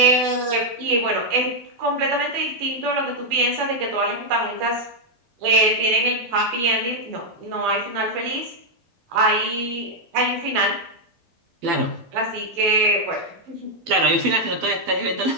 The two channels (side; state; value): left; late; 12 ms